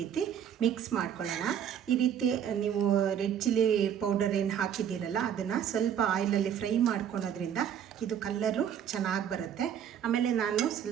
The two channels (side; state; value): left; quieter; 9.0 dB